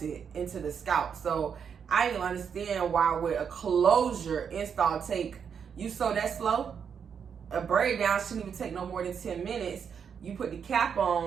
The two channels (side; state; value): left; quieter; 7.1 dB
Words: into the scalp. So I didn't understand why would a closure install take You sew that slow? A braid down shouldn't even take no more than 10 minutes. You put the cap